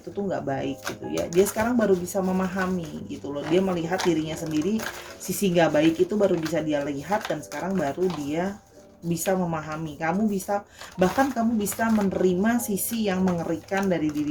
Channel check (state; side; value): identical; both; correlation 1.00